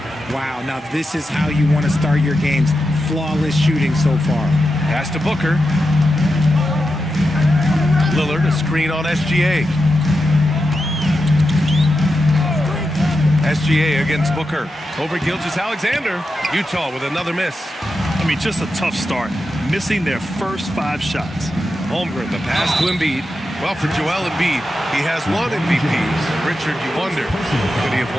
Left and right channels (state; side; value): normal; both; correlation 0.89